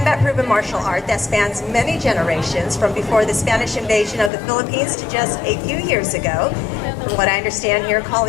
martial art that spans many generations, from before the Spanish invasion of the Philippines to just a few years ago. From what I understand here,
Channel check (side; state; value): right; drops out; at 4.3 s